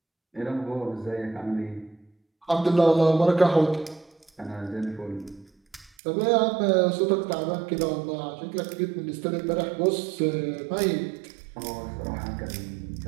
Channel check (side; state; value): left; drops out; at 5.9 s